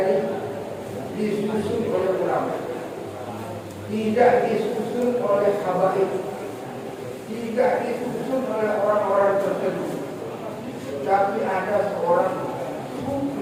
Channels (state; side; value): identical; both; correlation 1.00